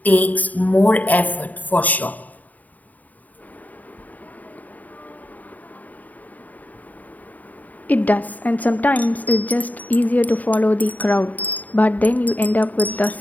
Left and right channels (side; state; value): right; late; 0.077 ms